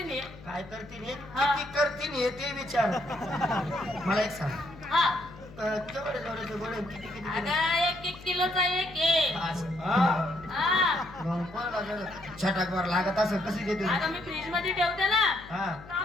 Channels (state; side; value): noise; left; hum, 19 dB below the sound